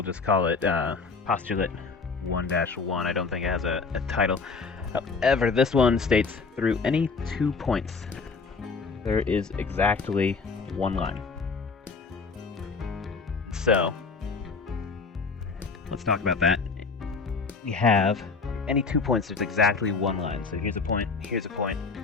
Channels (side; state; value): right; quieter; 4.6 dB